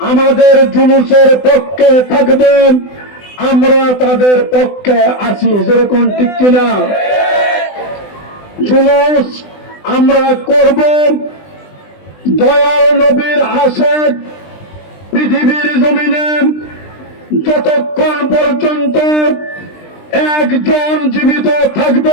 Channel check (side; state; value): right; late; 20 ms